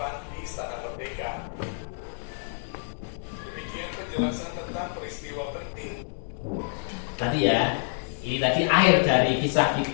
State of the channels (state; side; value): silent; right; 60 dB below the other